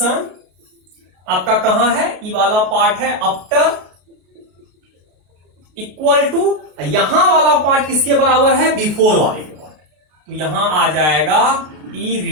आपका कहां है, ई वाला पार्ट है आफ्टर, इक्वल टू यहां वाला पार्ट किसके बराबर है, बिफोर वाले के पार्ट। तो यहां आ जाएगा ई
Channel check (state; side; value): late; left; 33 ms